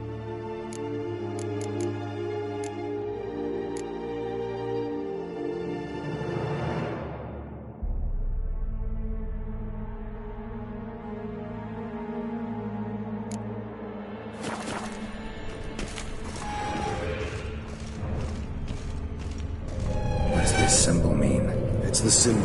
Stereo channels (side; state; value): both; identical; correlation 1.00